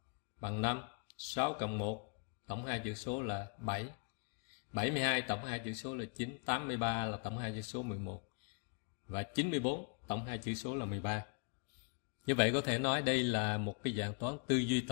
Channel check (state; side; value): quieter; right; 39.4 dB